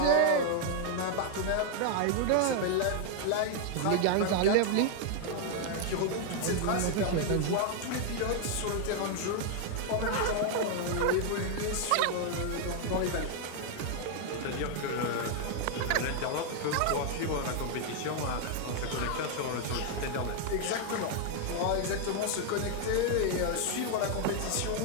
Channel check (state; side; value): different; both; correlation 0.00